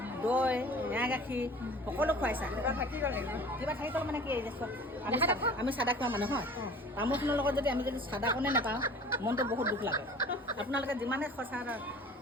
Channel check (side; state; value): both; normal; correlation 0.44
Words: দৈ এৱা গাখীৰ সকলো খুৱাইছা কিবা থাকি গ'ল মানে কি আমি চাদা খোৱা মানুহ হয় তামোলখনৰ লগত যদি আমি যদি চাদাকণে নাপাওঁ মনটো বহুত দুখ লাগে আপোনালোকে যিমানে খৰচা